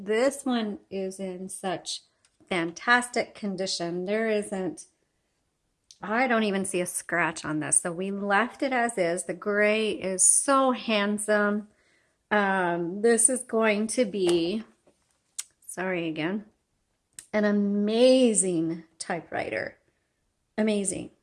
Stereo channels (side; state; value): both; identical; correlation 1.00